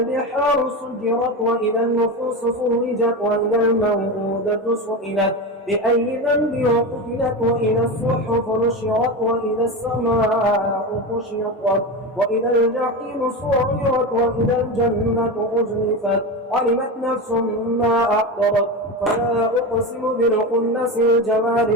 سجرت وإذا النفوس فرجت وإذا الموءودة سئلت بأي ذنب قتلت وإذا الصحف نشرت وإذا السماء كشطت وإذا الجحيم سعرت وإذا الجنة أزلفت علمت نفس ما أحضرت فلا أقسم بالخنس الجوار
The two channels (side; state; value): both; normal; correlation 0.21